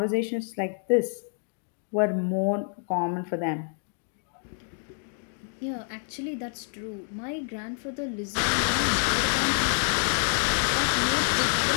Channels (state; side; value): silent; right; 60 dB below the other